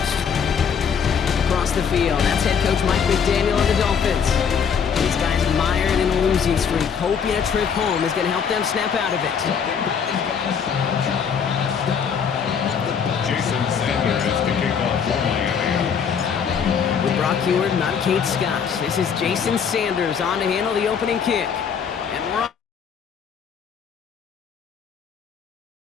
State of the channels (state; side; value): quieter; right; 7.0 dB